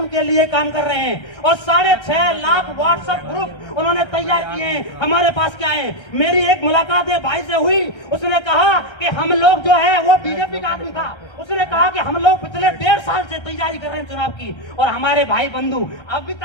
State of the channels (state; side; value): late; right; 1.3 ms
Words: लिए काम कर रहे हैं। और 6.5 लाख व्हाट्सएप ग्रुप उन्होंने तैयार किए हैं। हमारे पास क्या है, मेरी एक मुलाकात एक भाई से हुई, उसने कहा कि हम लोग जो है, वो बीजेपी का आदमी था, उसने कहा कि हम लोग पिछले 1.5 साल से तैयारी कर रहे हैं चुनाव की, और हमारे भाई बंधु अभी